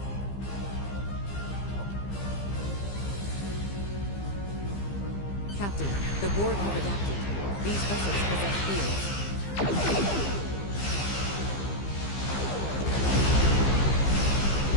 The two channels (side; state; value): right; late; 15 ms